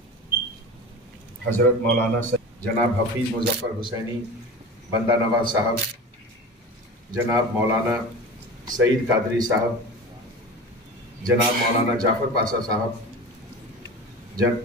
हजरत मौलाना जनाब हफीज मुजफ्फर हुसैनी बंदा नवाज साहब, जनाब मौलाना सईद कादरी साहब, जनाब मौलाना जाफर पाशा साहब,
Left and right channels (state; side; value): normal; both; correlation 0.32